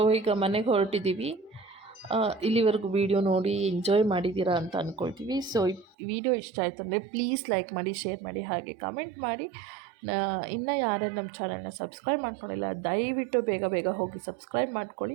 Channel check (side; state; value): left; drops out; at 6.0 s